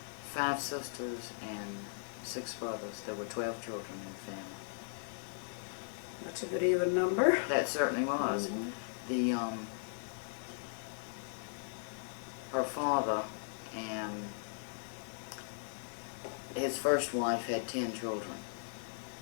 5 sisters and 6 brothers. There were 12 children in the family. That's a good even number. That certainly was. The her father and his first wife had 10 children,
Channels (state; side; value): silent; right; digital silence